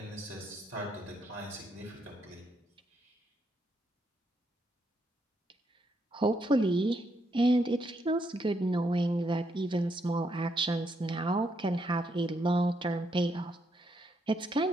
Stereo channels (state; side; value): normal; both; correlation 0.77